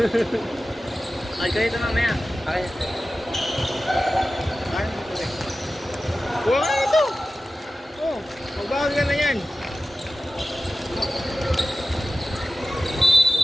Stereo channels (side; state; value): both; normal; correlation 0.95